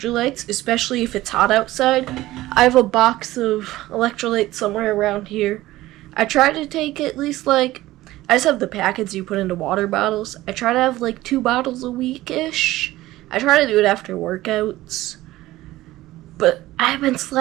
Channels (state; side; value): quieter; left; 16.7 dB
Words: especially if it's hot outside. I have a box of electrolytes somewhere around here. I try to take at least I just have the packets you put into water bottles. I try to have 2 bottles a week-ish. I try to do it after workouts. But I've been